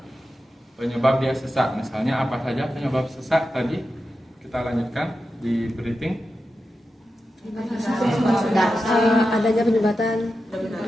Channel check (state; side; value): normal; both; correlation 0.91